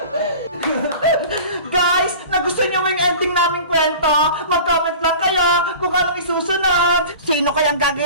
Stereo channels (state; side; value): inverted; both; correlation -0.39